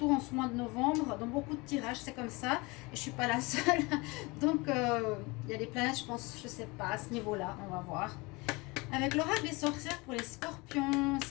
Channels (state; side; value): quieter; right; 25.3 dB